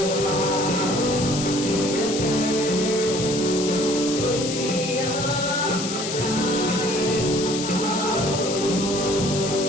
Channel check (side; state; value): left; noise; hiss, 5 dB below the sound